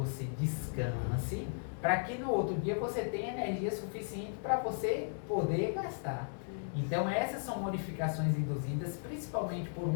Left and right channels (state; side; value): silent; right; digital silence